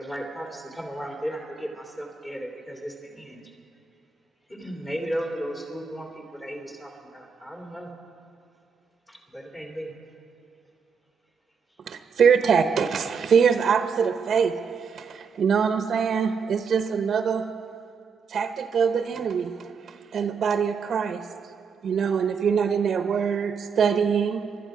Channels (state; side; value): quieter; left; 6.0 dB